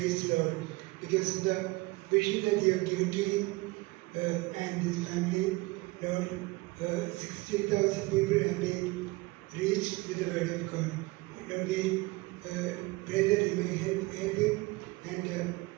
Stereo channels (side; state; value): left; quieter; 23.0 dB